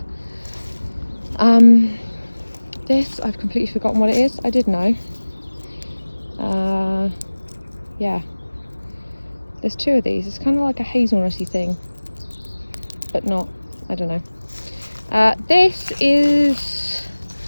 This, I've completely forgotten what it is. I did know. Yeah, there's two of these. It's kind of like a hazelnutty thing, but not, I don't know. This is,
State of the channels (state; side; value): inverted; both; correlation -1.00